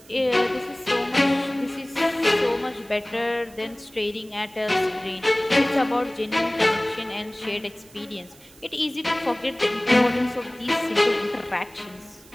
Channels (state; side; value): noise; right; hiss, 24 dB below the sound